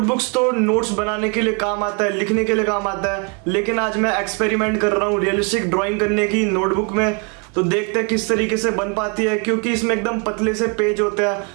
तो नोट्स बनाने के लिए काम आता है, लिखने के लिए काम आता है, लेकिन आज मैं एक्सपेरिमेंट कर रहा हूँ रियलिस्टिक ड्राइंग करने की नोटबुक में। तो देखते हैं किस तरीके से बन पाती है, क्योंकि इसमें एकदम पतले से पेज होते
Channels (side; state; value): left; quieter; 35.1 dB